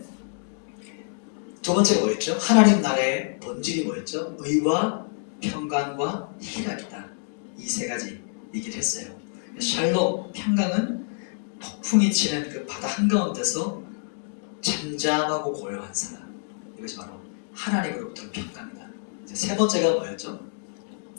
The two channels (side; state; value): right; silent; digital silence